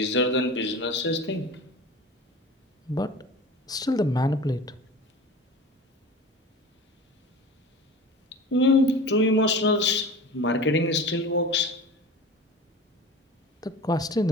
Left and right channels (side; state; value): both; normal; correlation 0.36